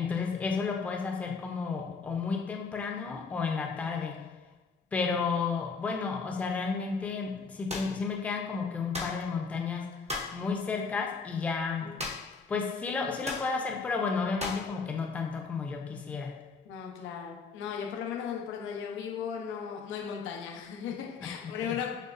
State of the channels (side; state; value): right; quieter; 4.9 dB